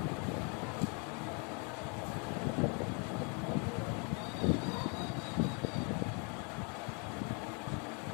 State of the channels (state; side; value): quieter; right; 34.7 dB